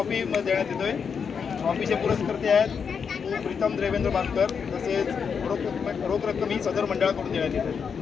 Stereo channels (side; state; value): right; quieter; 6.4 dB